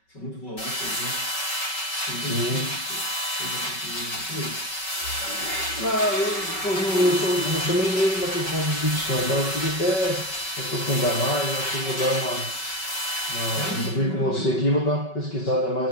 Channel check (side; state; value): right; late; 5.3 ms